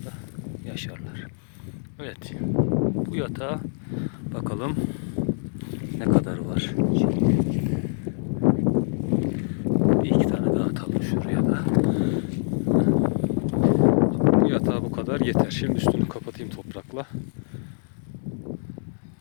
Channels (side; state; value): right; silent; 62 dB below the other